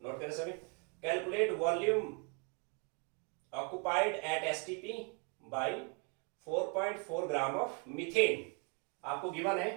नोट करें सभी, calculate volume occupied at STP by 4.4 gram of methane. आपको गिवन है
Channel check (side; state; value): left; quieter; 36.5 dB